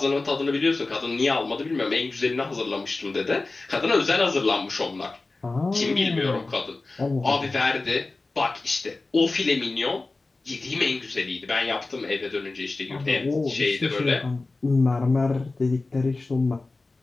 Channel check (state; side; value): quieter; right; 3.4 dB